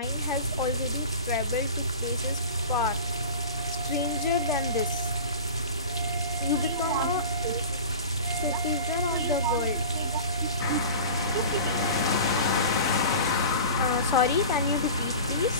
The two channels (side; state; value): both; inverted; correlation -0.36